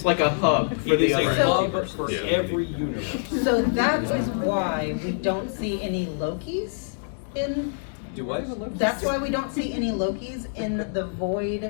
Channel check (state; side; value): silent; right; digital silence